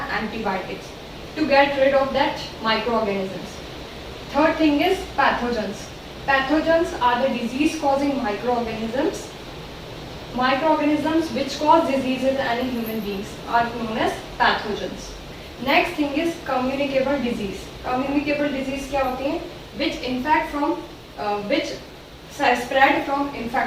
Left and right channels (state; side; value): identical; both; correlation 1.00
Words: Antibiotics to get rid of that microorganisms. Third thing is pathogens. Pathogens are the disease causing microorganisms. Microorganisms which cause diseases in any human beings are known as pathogens. Next thing is communicable disease. Communicable disease क्या होती है? Which infect from which spread from